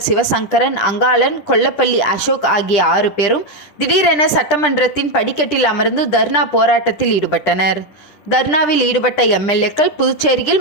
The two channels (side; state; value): right; late; 10 ms